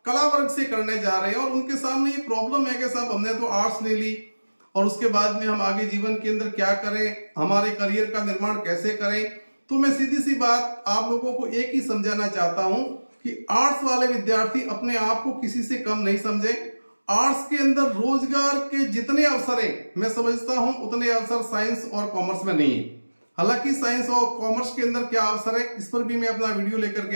कला वर्ग से करने जा रहे हैं और उनके सामने ये प्रॉब्लम है कि साहब हमने तो आर्ट्स ले ली और उसके बाद में हम आगे जीवन के अंदर क्या करें, हमारे करियर का निर्माण कैसे करें। तो मैं सीधी सी बात आप लोगों को एक ही समझाना चाहता हूं कि आर्ट्स वाले विद्यार्थी अपने आप को किसी से कम नहीं समझे। आर्ट्स के अंदर रोजगार के जितने अवसर हैं मैं समझता हूं उतने अवसर साइंस और कॉमर्स में नहीं है। हालांकि साइंस और कॉमर्स के अंदर क्या अवसर है इस पर भी मैं अपना वीडियो लेकर के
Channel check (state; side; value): inverted; both; correlation -1.00